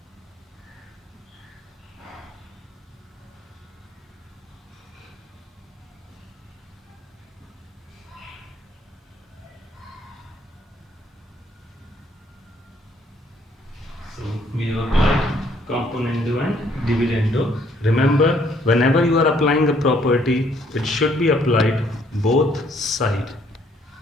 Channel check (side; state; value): both; normal; correlation 0.65